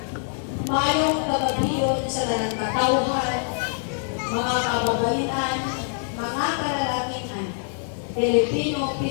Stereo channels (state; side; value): silent; right; 58 dB below the other